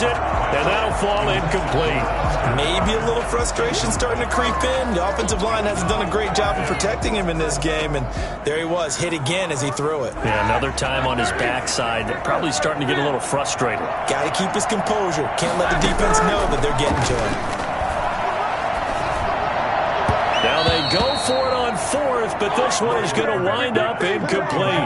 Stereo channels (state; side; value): identical; both; correlation 1.00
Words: it, and that'll fall incomplete. Maybe a little frustration starting to creep in. The offensive line hasn't done a great job of protecting him in this game, and there he was, hit again as he threw it. Yeah, another time on his backside. Probably starting to get a little frustrated. Got to keep his composure. Can't let the defense know that they're getting to him. Now they go for it on 4th, but this one is going to wind up